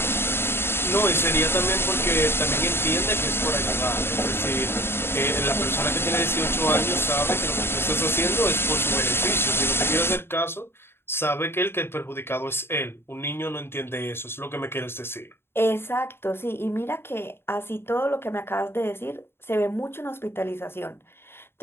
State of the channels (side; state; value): right; late; 0.11 ms